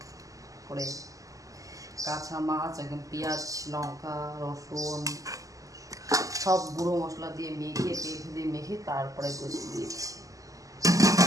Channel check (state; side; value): late; left; 0.16 ms